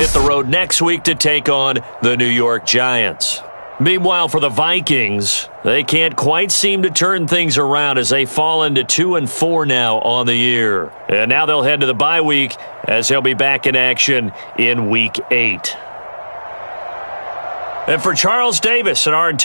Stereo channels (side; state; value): both; inverted; correlation -1.00